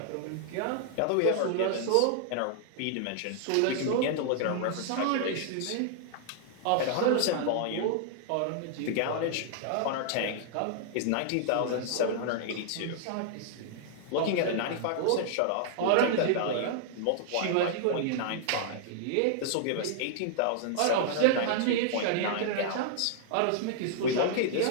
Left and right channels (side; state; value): both; different; correlation -0.01